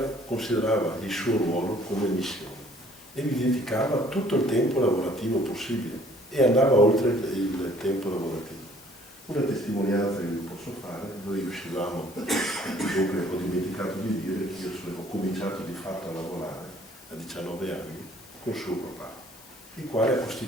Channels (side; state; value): left; noise; hiss, 22 dB below the sound